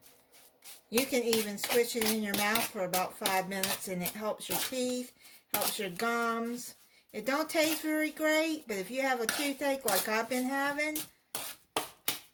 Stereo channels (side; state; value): both; identical; correlation 1.00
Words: You can even squish it in your mouth for about 5 minutes and it helps your teeth, helps your gums. It don't taste very great, but if you have a toothache like I've been having,